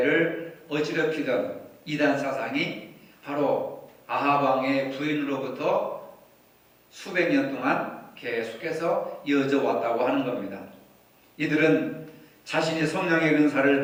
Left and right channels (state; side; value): identical; both; correlation 1.00